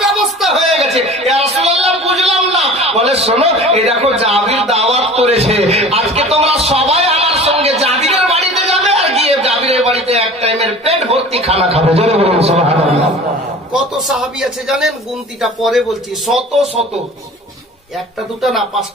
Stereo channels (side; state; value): both; normal; correlation 0.41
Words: ব্যবস্থা হয়ে গেছে। ইয়া রাসূলুল্লাহ, বুঝলাম না। বলে, শোনো, এই দেখো জাবির দাওয়াত করেছে, আজকে তোমরা সবাই আমার সঙ্গে জাবিরের বাড়িতে যাবে, আর গিয়ে জাবিরের বাড়িতে এক টাইমের পেট ভর্তি খানা খাবে। জোরে বলুন সুবহানাল্লাহ। কত সাহাবী আছে জানেন? গুনতিটা পরে বলছি, শত শত, একটা দুটা না,